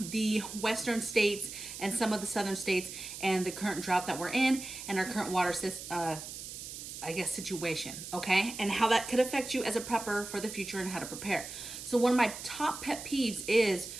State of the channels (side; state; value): right; noise; hiss, 10 dB below the sound